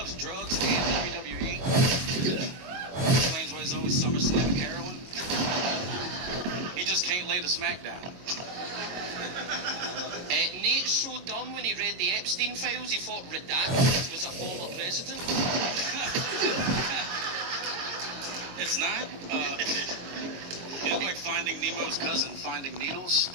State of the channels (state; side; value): late; left; 22 ms